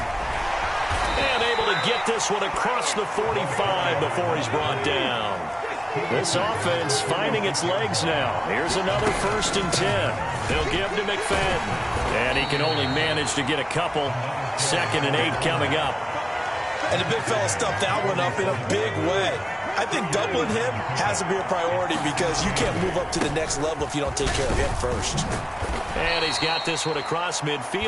And able to get this one across the 45 before he's brought down. This offense finding its legs now. Here's another 1st and 10. They'll give to McFadden. And he can only manage to get a couple. 2nd and 8 coming up. And the big fella stuffed that one up in a big way. I think doubling him has to be a priority, because you can't move up to the next level if you don't take care of him first. And he's got this one across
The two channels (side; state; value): both; identical; correlation 1.00